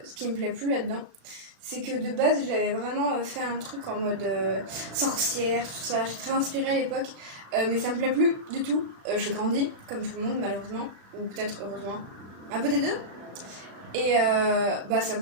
ce qui me plaît plus là-dedans, c'est que de base, j'avais vraiment fait un truc en mode sorcière, tout ça. J'ai très inspirée à l'époque. Mais ça me plaît plus du tout. J'ai grandi, comme tout le monde, malheureusement. Ou peut-être heureusement. Un peu des deux. Et ça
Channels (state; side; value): late; left; 36 ms